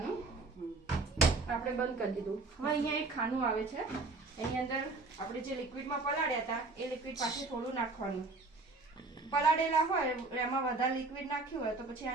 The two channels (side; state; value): left; quieter; 3.5 dB